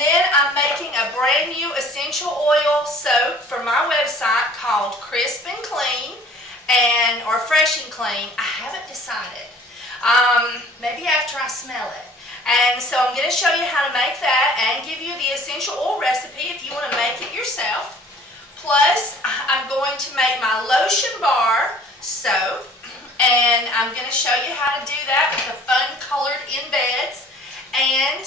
I'm making a brand new essential oil soap for my website called Crisp and Clean or Fresh and Clean. I haven't decided. Maybe after I smell it. And so I'm going to show you how to make that and give you the essential oil recipe if you want to make it yourself. Plus, I'm going to make my lotion bar soap, and I'm going to show you how to do that with the fun colored embeds. And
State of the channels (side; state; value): both; normal; correlation 0.51